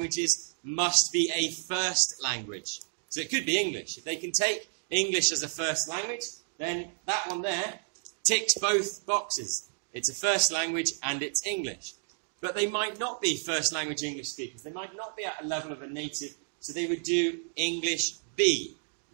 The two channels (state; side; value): silent; left; digital silence